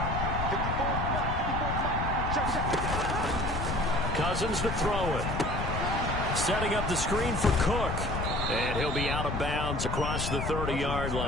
Cousins to throw it. Setting up the screen for Cook. And he'll be out of bounds across the 30-yard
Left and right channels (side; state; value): left; noise; rumble, 2 dB below the sound